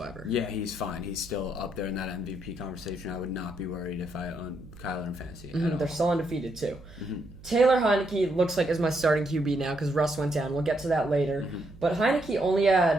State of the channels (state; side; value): noise; right; hum, 19 dB below the sound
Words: Yeah, he's fine. He's still up there in that MVP conversation. I would not be worried if I owned Kyler in fantasy. They're still undefeated, too. Taylor Heineke looks like is my starting QB now because Russ went down. We'll get to that later. But Heineke